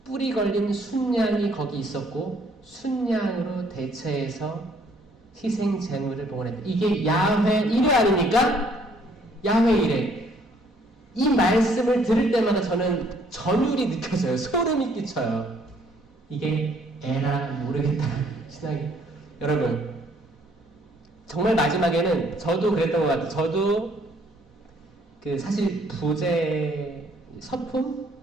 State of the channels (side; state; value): both; normal; correlation 0.63